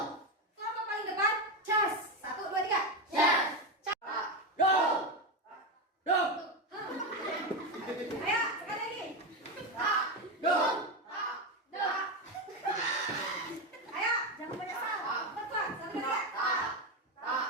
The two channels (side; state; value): both; normal; correlation 0.13